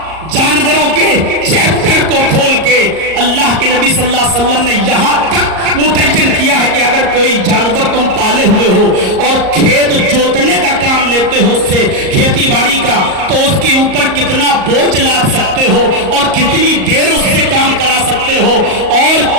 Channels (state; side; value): late; left; 38 ms